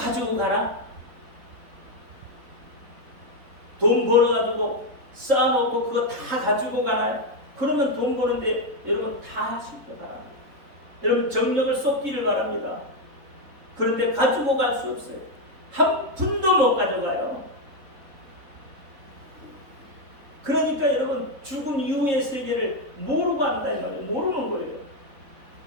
가나? 돈 벌어가지고 쌓아놓고 그거 다 가지고 가나요? 그러면 돈 버는데 여러분 다 하실 거 바랍니다. 여러분 정력을 쏟기를 바랍니다. 그런데 가지고 갈 수 없어요. 한 푼도 못 가져가요. 그러니까 여러분 죽음 이후의 세계를 모르고 한다 이 말이에요. 모르는 거예요.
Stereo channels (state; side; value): late; left; 3.7 ms